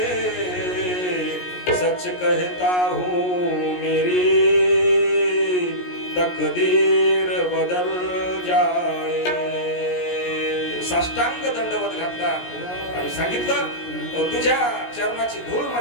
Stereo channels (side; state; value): right; late; 17 ms